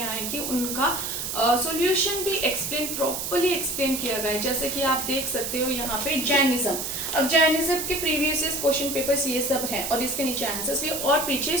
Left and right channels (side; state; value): right; noise; hiss, 4 dB below the sound